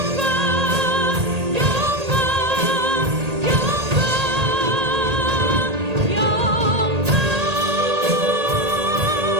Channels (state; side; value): late; left; 1.8 ms